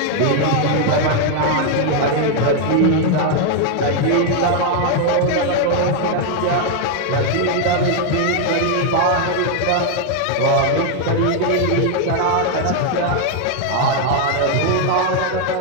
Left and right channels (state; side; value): different; both; correlation 0.00